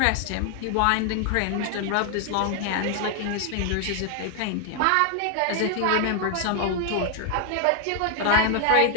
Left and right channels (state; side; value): different; both; correlation 0.00